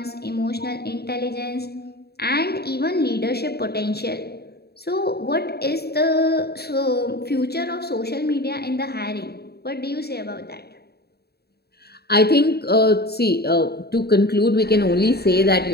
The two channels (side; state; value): right; late; 0.47 ms